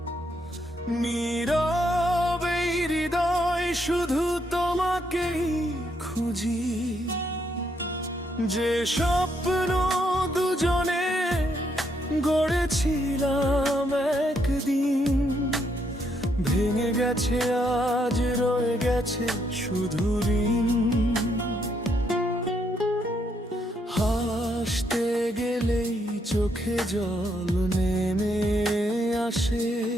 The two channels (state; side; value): normal; both; correlation 0.75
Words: নীরবে হৃদয় শুধু তোমাকেই খুঁজি। যে স্বপ্ন দুজনে গড়েছিলাম একদিন, ভেঙে গেছে আজ, রয়ে গেছে শুধু ঋণ। হাসতে গেলেই চোখে জল নেমে আসে,